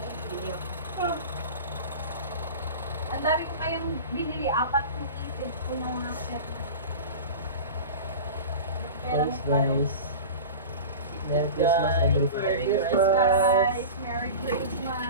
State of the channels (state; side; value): inverted; both; correlation -0.32